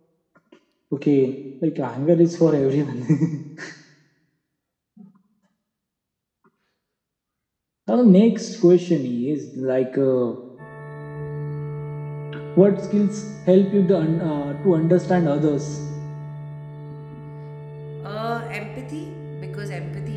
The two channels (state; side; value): identical; both; correlation 1.00